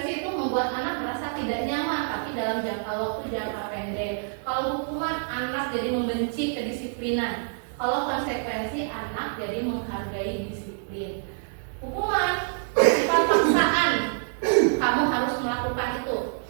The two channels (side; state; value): left; silent; digital silence